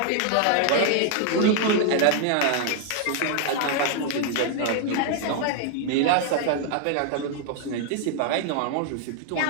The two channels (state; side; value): different; both; correlation 0.00